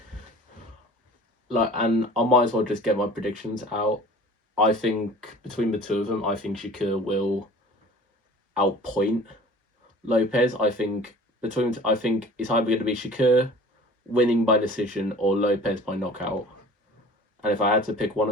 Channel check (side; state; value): both; normal; correlation 0.44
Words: and I might as well just get my predictions out. I think between the two of them, I think Shakur will outpoint Lopez. I think it's either going to be Shakur winning by decision or Lopez by knockout. And if I had to pick one